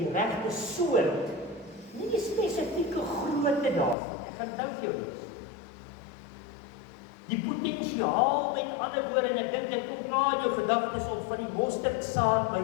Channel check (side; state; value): right; drops out; at 4.0 s